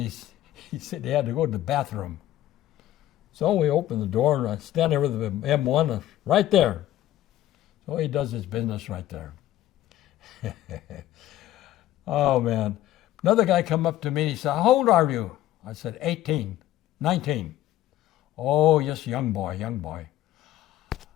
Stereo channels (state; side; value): quieter; right; 13.8 dB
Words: he said he had to go to the bathroom. So we opened the door, and I stand there with the M1 right there. So he does his business right there. Oh, man. Another guy come up to me, and he said, how old are you? I said, 18, 19. Oh, yes, young boy.